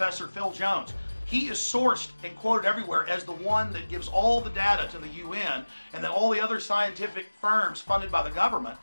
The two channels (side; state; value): both; inverted; correlation -1.00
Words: Phil Jones. He is sourced and quoted everywhere as the one that gives all the data to the UN, and then all the other scientific firms funded by the government,